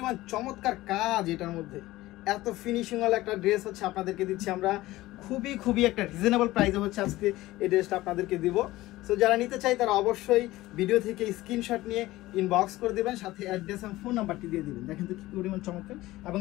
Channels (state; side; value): quieter; right; 17.5 dB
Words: চমৎকার কাজ এটার মধ্যে, এত ফিনিশিং ওয়ালা একটা ড্রেস হচ্ছে আপনাদেরকে দিচ্ছি আমরা খুবই একটা রিজনেবল প্রাইসে হচ্ছে আজকে এই ড্রেসটা আপনাদেরকে দিব। সো যারা নিতে চাই তারা অবশ্যই ভিডিও থেকে স্ক্রিনশট নিয়ে ইনবক্স করে দেবেন, সাথে অ্যাড্রেস এবং ফোন নাম্বারটি দিয়ে দিবেন। দেখেন তো কি পরিমাণ চমৎকার, এবং